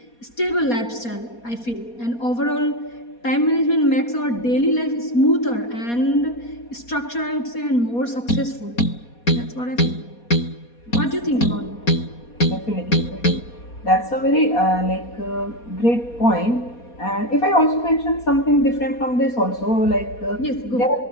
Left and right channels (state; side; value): late; right; 4.2 ms